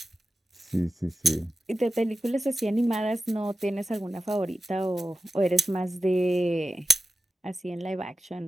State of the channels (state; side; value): normal; both; correlation 0.93